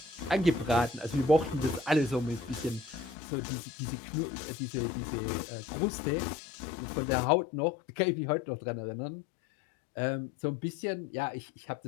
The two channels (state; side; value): drops out; right; at 3.2 s